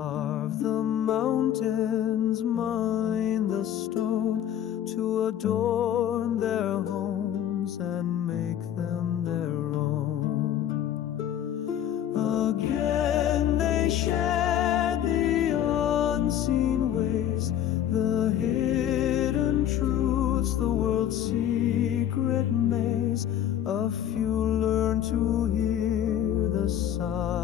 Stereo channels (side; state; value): right; quieter; 10.7 dB